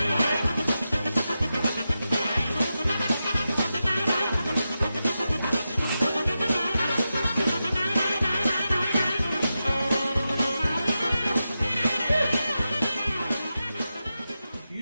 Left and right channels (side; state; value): both; inverted; correlation -0.90